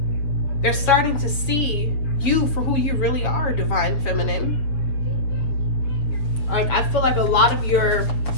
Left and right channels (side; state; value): right; late; 6.8 ms